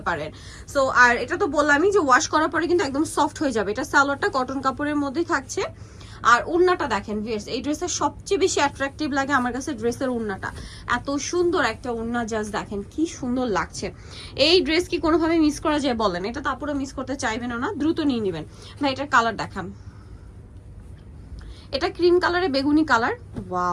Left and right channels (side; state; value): both; identical; correlation 1.00